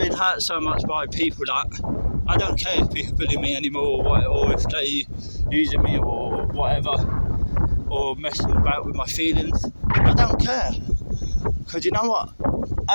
hurt so much by people that I don't care if people bully me anymore, or if they using me or whatever, or messing about with my feelings. I don't care, because you know what?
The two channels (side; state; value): both; inverted; correlation -1.00